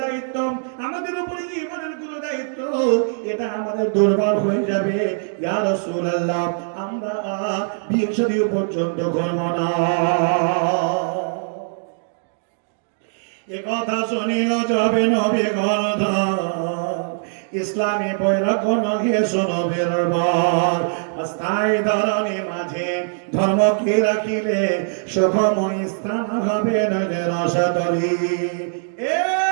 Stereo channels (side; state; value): left; silent; digital silence